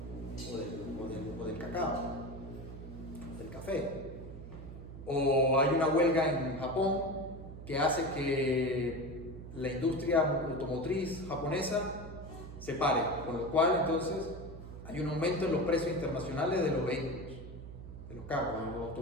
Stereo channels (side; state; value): right; noise; hum, 12 dB below the sound